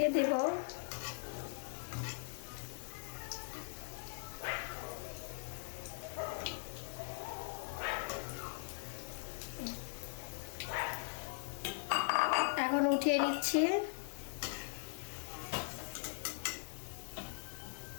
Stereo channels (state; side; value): silent; right; digital silence